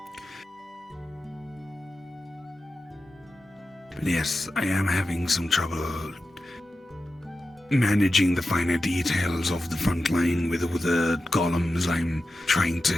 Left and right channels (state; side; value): normal; both; correlation 0.92